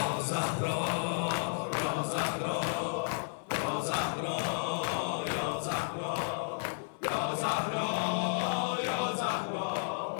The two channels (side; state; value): right; silent; 56 dB below the other